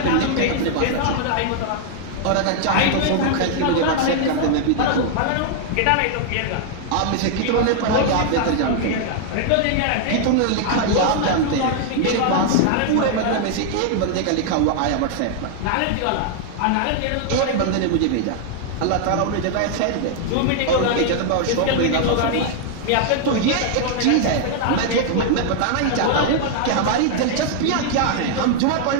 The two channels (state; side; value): different; both; correlation 0.00